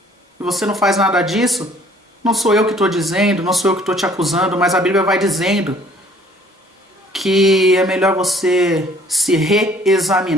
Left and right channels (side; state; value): both; normal; correlation 0.57